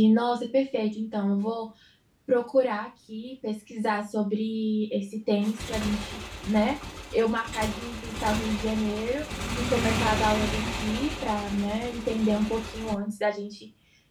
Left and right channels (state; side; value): identical; both; correlation 1.00